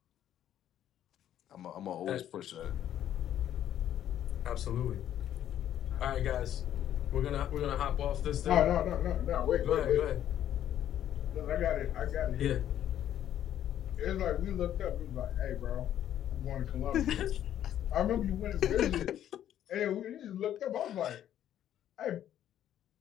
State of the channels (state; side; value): quieter; right; 11.1 dB